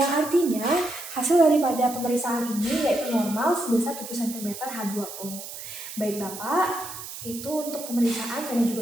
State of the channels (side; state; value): right; noise; hiss, 11 dB below the sound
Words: yang artinya hasil daripada pemeriksaan ini yaitu normal sebesar 7 cm H2O. Baik Bapak, itu untuk pemeriksaan vena